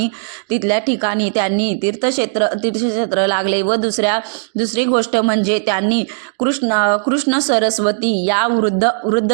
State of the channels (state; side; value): silent; left; digital silence